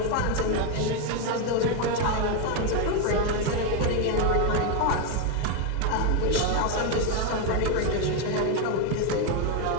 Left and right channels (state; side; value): different; both; correlation 0.02